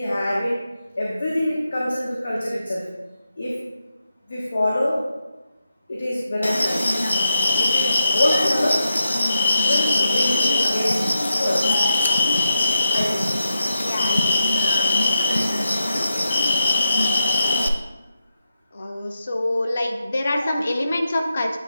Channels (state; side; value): inverted; both; correlation -0.86